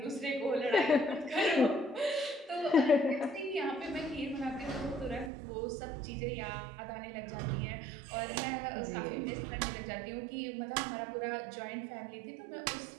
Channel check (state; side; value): drops out; left; at 5.3 s